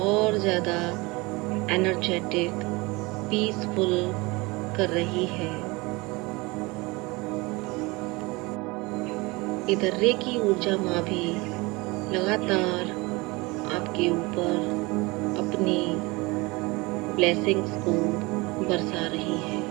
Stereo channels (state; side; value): quieter; left; 24.5 dB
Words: ज़्यादा एनर्जेटिक, पीसफुल कर रही है। इधर रेकी ऊर्जा माँ भी लगातार आपके ऊपर अपनी ब्लेसिंग्स को बरसा रही है।